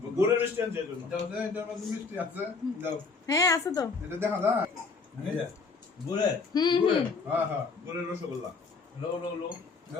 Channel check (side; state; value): right; quieter; 4.5 dB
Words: গুড়ের মিষ্টি আনছে এই জন্য। মিষ্টি আছে, দাও। হ্যাঁ আছে তো। এটা দেখা যায়। এই যে, ঘুরে হ্যাঁ হ্যাঁ, গুড়ের রসগোল্লা। লো লো লো